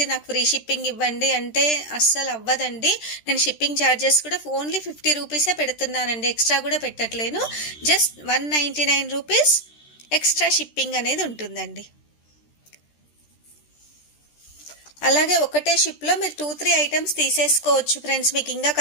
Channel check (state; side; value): late; right; 13 ms